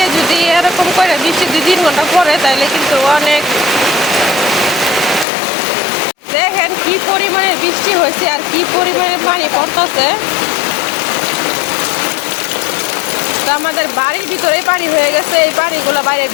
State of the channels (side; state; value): right; drops out; at 5.2 s